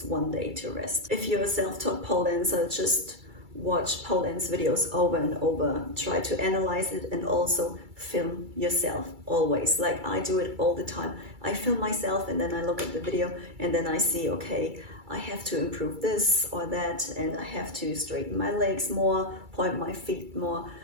1 day to rest. If you're a self-taught pole dancer, just watch Pauline's videos over and over, try to analyze it, and also film yourself always. Like I do it all the time. I film myself and then I look at the video and then I see, okay, I have to improve this or that, and I have to straighten my legs more, point my feet more,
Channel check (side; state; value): left; late; 2.3 ms